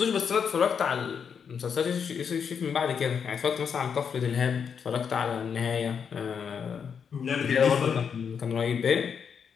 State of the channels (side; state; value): right; quieter; 6.9 dB